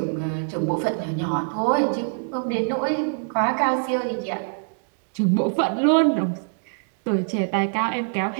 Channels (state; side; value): silent; left; digital silence